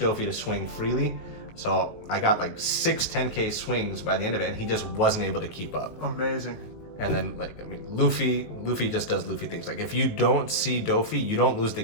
to swing freely. So I got like 6 10k swings by the end of it, and he just wasn't able to keep up. Amazing. And then, like, I mean, Luffy just does Luffy things. Like, if you don't see Doffy, you don't lose the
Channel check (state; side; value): late; right; 19 ms